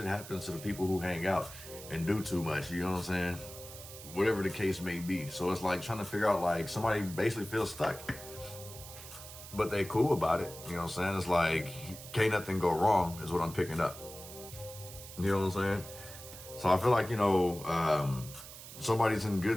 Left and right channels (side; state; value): right; noise; hiss, 14 dB below the sound